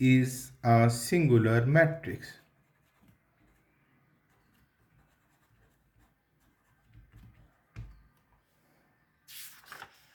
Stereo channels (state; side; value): identical; both; correlation 1.00